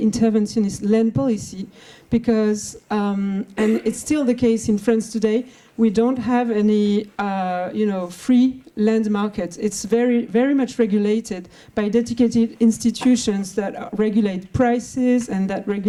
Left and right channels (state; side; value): identical; both; correlation 1.00